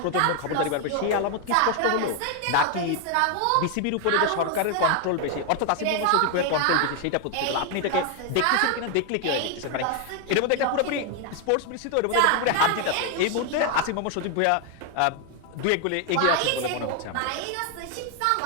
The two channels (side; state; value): both; different; correlation 0.01